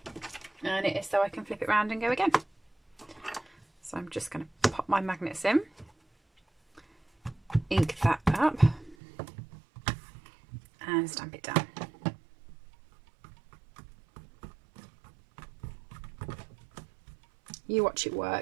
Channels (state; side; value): drops out; left; at 9.0 s